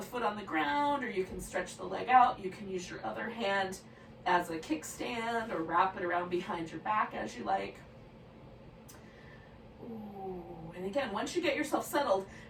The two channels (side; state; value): both; identical; correlation 1.00